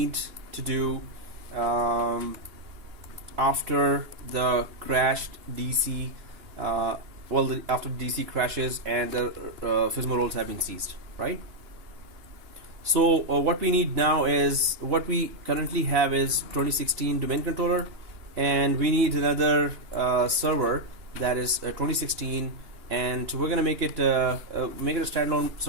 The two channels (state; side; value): late; left; 2.9 ms